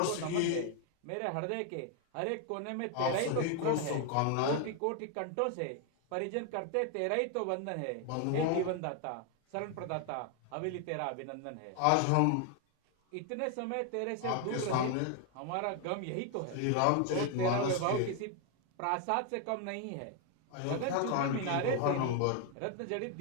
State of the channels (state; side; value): different; both; correlation 0.01